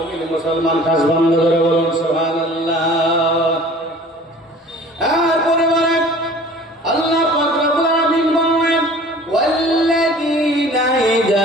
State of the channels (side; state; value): both; normal; correlation 0.46